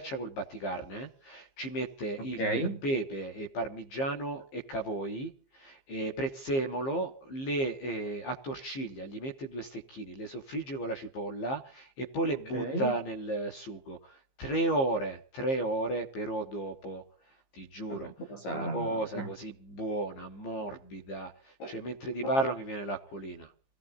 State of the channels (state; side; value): late; right; 15 ms